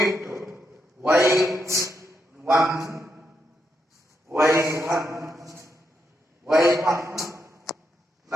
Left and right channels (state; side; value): normal; both; correlation 0.82